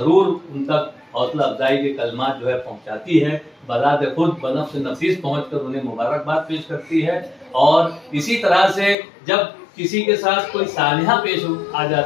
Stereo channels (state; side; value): drops out; right; at 9.0 s